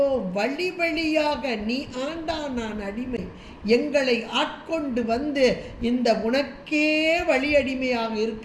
வழி வழியாக நீ ஆண்டா நான் அடிமை, எங்களை ஆட்கொண்டு வந்து இந்த உனக்கே வழி அடிமையாக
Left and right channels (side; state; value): both; identical; correlation 1.00